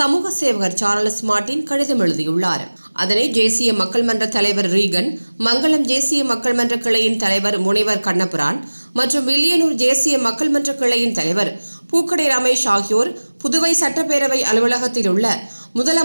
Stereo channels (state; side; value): inverted; both; correlation -1.00